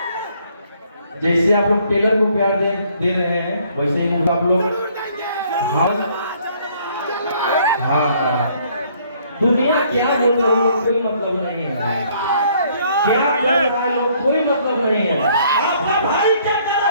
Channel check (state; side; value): inverted; both; correlation -0.63